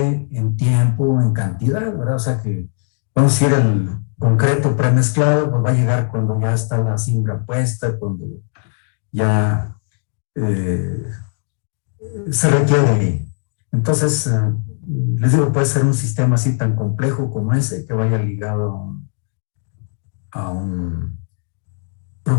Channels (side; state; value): right; silent; 55 dB below the other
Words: en tiempo, en cantidad, ¿verdad? O sea que vamos a ir el concreto premezclado, pues va a llegar cuando ya está la cimbra puesta, cuando ya se requiere. Entonces, les digo, puede ser un sistema así tan complejo como ese que vaya ligado a un